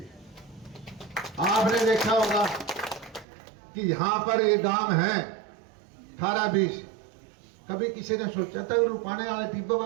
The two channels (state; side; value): drops out; left; at 3.2 s